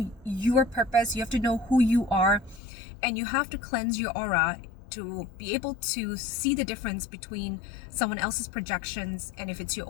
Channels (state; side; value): drops out; right; at 2.6 s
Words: your purpose. You have to know who you are, and you have to cleanse your aura to be able to see the difference between someone else's projections and if it's your